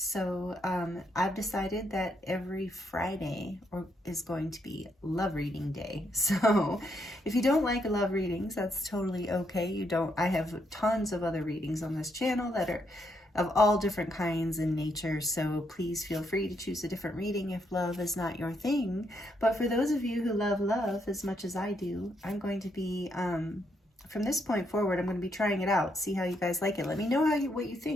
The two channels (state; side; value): normal; both; correlation 0.76